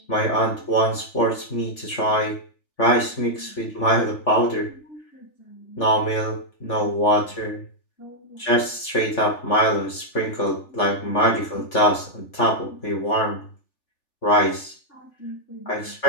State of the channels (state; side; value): late; right; 3.4 ms